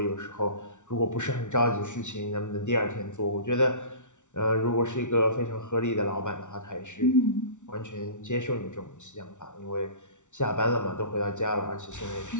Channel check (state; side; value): late; right; 0.85 ms